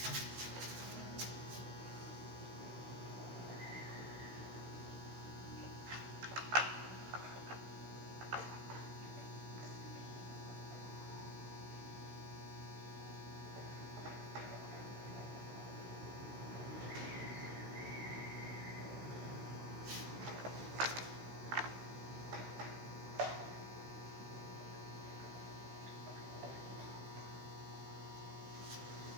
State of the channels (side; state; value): left; late; 16 ms